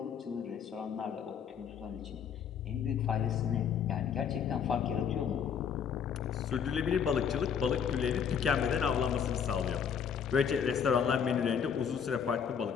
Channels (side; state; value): right; quieter; 7.5 dB